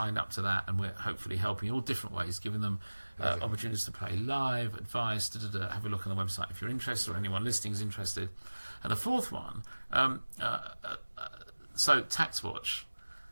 up to that, and we're hopefully helping in all different ways, giving them opportunities to play live, advice, have a look on the website if you're interested, or anyone listening is interested. And the fourth one, so Tax Watch.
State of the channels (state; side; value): inverted; both; correlation -1.00